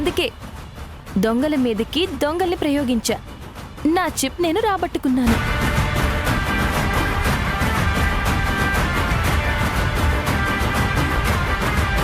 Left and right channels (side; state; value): both; identical; correlation 1.00